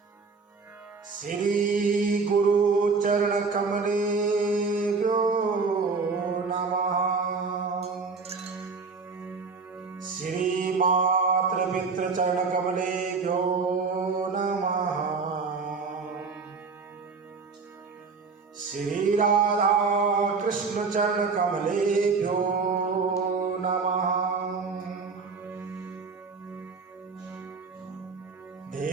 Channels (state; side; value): quieter; left; 4.7 dB